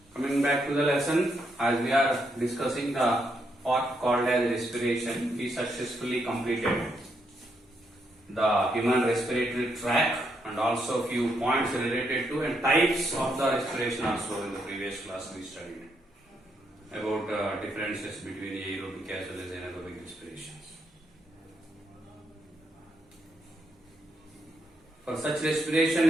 coming back to the lesson, as we are discussing the part called as respiration, we successfully completed the human respiratory tract and also few points related to and types of the respiration also in the previous class we studied about differences between aerobic as well as anaerobic respirations. For such respiration,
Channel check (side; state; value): both; normal; correlation 0.78